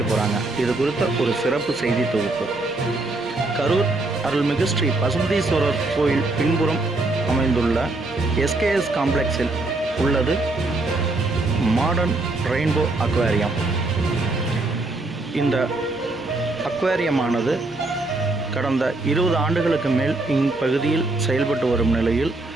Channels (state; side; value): quieter; left; 3.0 dB